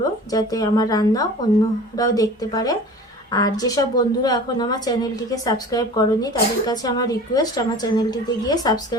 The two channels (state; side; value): normal; both; correlation 0.41